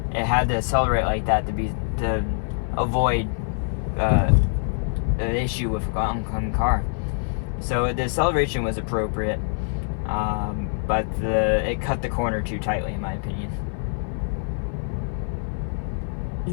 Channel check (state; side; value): silent; right; 57 dB below the other